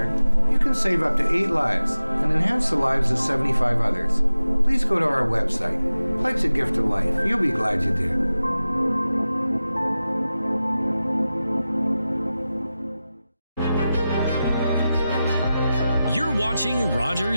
you can save up to 8 lives and enhance the lives of 75 others. Please go to our website. Pledge a gift of life. You'll be glad you did. You're watching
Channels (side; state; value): both; inverted; correlation -0.94